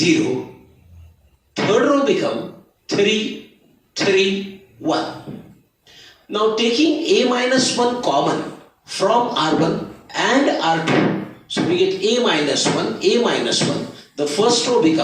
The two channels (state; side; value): identical; both; correlation 1.00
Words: Third row becomes 3, 3, 1. Now taking a minus 1 common from R1 and R2, so we get a minus 1, a minus 1. The first row